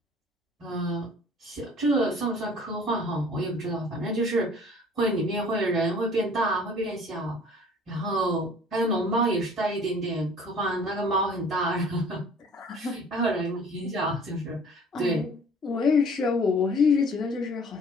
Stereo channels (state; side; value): normal; both; correlation 0.50